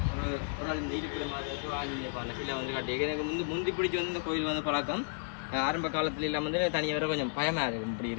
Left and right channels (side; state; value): right; silent; digital silence